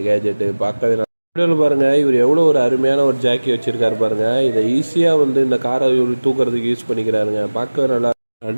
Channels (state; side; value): inverted; both; correlation -1.00